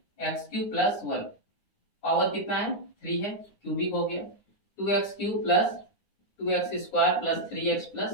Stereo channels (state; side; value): late; right; 9.5 ms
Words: x³ + 1, पावर कितना है 3 है, क्यूबिक हो गया। 2x³ + 2x² + 3x